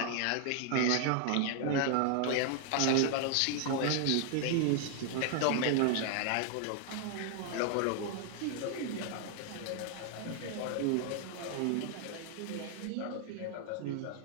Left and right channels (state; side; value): different; both; correlation 0.00